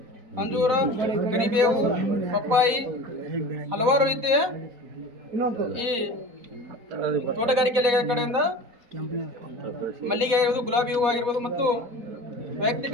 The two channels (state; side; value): late; left; 4.2 ms